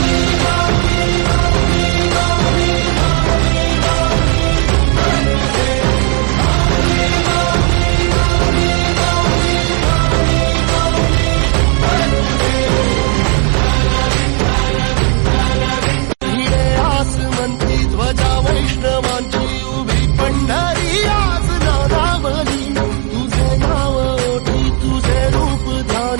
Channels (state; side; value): quieter; left; 38.7 dB